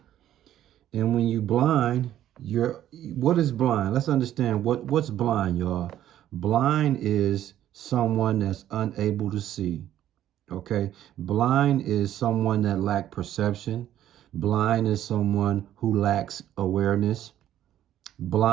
And when you blind, what is blind? Let's understand what's blind, y'all. Blind is someone that's unable to see. Okay. Blind is someone that lacks perception. Blind is someone who lacks awareness.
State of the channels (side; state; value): left; quieter; 12.0 dB